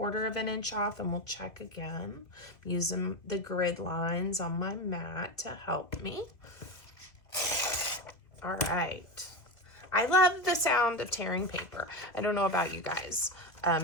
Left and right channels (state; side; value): late; right; 2.0 ms